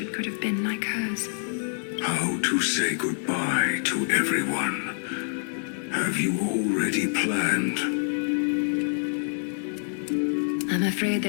could have been like hers. How to say goodbye to everyone? Have you already planned? I'm afraid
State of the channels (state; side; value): silent; right; digital silence